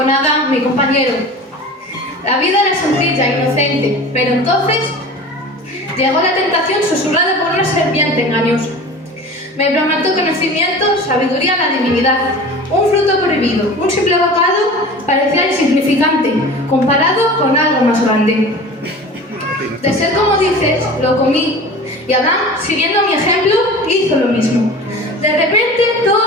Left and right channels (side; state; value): both; normal; correlation 0.37